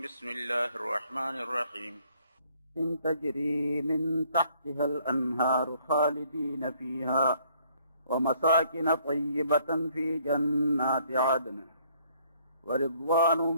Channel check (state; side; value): inverted; both; correlation -0.64